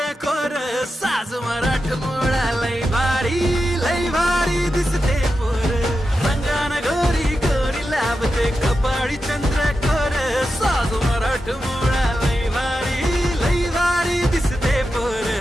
कोर साज मराठ मोळा लय भारी दिसते पोर रंगान गोरी गोरी लावते कपाळी चंद्र कोर साज मराठ मोळा लय भारी दिसते पोर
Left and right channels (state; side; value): normal; both; correlation 0.90